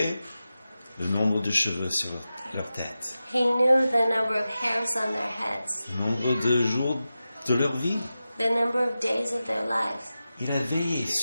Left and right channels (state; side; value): inverted; both; correlation -0.93